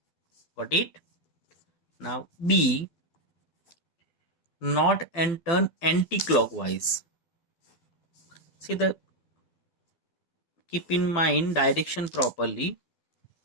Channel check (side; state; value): right; late; 12 ms